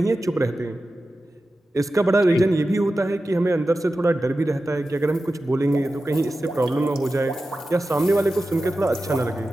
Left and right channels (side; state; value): both; normal; correlation 0.93